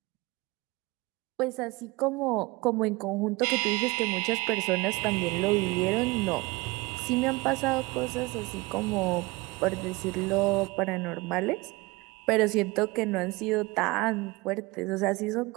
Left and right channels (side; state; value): left; quieter; 23.5 dB